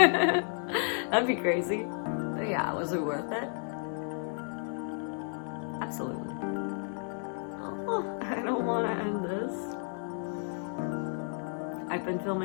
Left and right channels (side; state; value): right; silent; 56 dB below the other